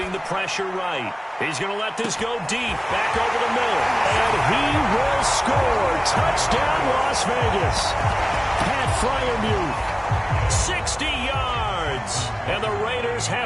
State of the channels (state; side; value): identical; both; correlation 1.00